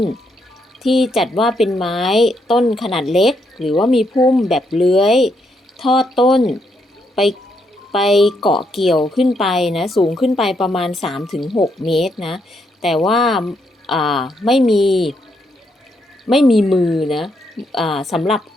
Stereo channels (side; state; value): both; normal; correlation 0.77